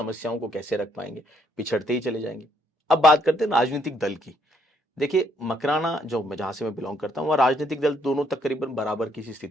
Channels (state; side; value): normal; both; correlation 0.70